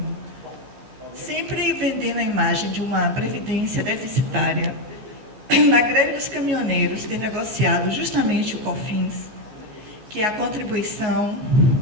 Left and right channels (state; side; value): late; left; 14 ms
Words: sempre vendendo a imagem de uma Previdência deficitária, na greve dos caminhoneiros ter negociado justamente o COFINS, que é a contribuição